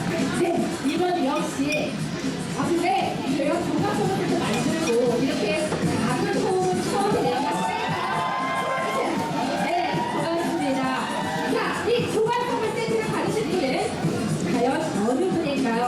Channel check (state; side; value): identical; both; correlation 1.00